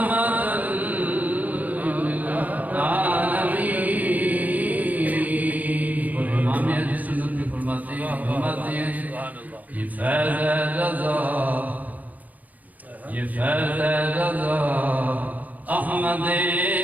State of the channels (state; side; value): late; left; 0.078 ms